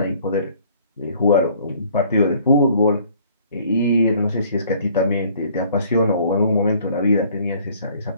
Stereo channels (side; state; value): both; inverted; correlation -0.57